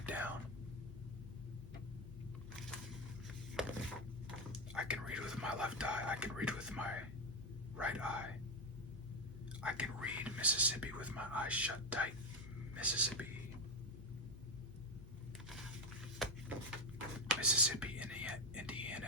down. I can read with my left eye, I can read with my right eye. I can read Mississippi with my eyes shut tight. Mississippi. Mississippi,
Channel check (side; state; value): both; normal; correlation 0.14